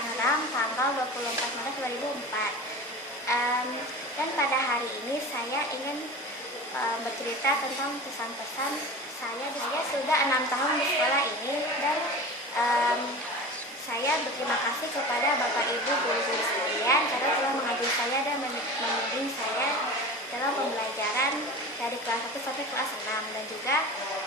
tanggal 24 Maret 2004. Dan pada hari ini saya ingin bercerita tentang pesan-pesan saya. Saya sudah 6 tahun di sekolah ini dan saya berterima kasih kepada Bapak Ibu guru-guru sekalian karena telah mengajari saya dan membimbing saya dalam pembelajaran dari kelas 1 sampai kelas 6, dan juga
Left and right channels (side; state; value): both; normal; correlation 0.33